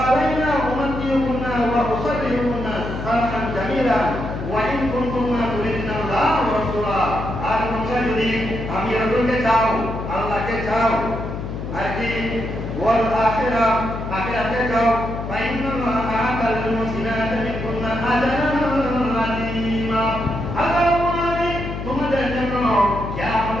أُمَتِّعُكُنَّ وَأُسَرِّحُكُنَّ سَرَحًا جَمِيلًا وَإِن كُنتُنَّ تُرِدْنَ اللَّهَ وَرَسُولَهُ। আর তোমরা যদি আমি রাসূলকে চাও, আল্লাহকে চাও, আর কি ওয়াল আখিরাতে চাও, ফাইন্না আল্লাহা আ'তাল মুহসিনাতি মিনকুন্না আজরান আযীমা। আল্লাহ আমি তোমাদের জন্য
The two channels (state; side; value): noise; left; hum, 6 dB below the sound